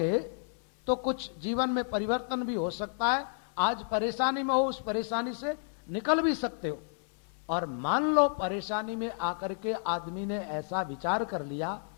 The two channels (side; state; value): right; silent; 57 dB below the other